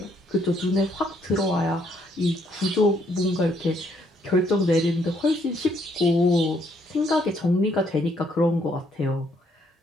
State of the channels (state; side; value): normal; both; correlation 0.70